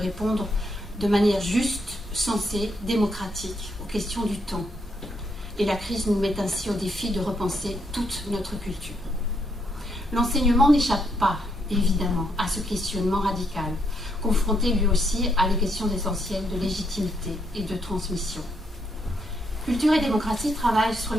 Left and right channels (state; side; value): normal; both; correlation 0.76